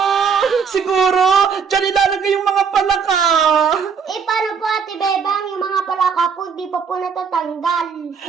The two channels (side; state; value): left; quieter; 6.2 dB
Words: Siguro, dyan ilalagay yung mga palaka! Paano po, Ate Bebang, yung mga palaka po, di pa po natatanggal.